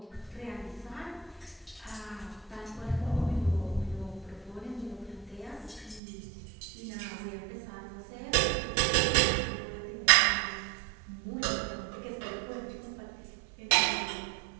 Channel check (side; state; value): left; drops out; at 6.0 s